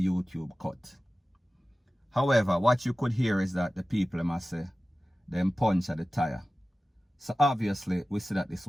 YouTube cut. However, what you could hear is that the people must say, them punch at the tire. So obviously, we see that this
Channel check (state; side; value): normal; both; correlation 0.96